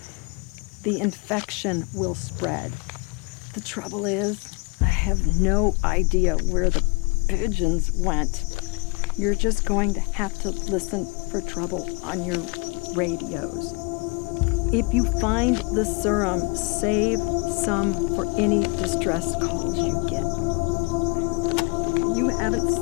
will spread. The trouble is, I have no idea where the pigeons went. You're just going to have to listen for trouble on your radios. If you find the serum, save some for any distress calls you get. You haven't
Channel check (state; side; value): quieter; right; 30.1 dB